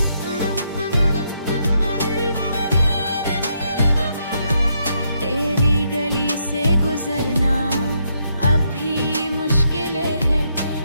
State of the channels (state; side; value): inverted; both; correlation -0.77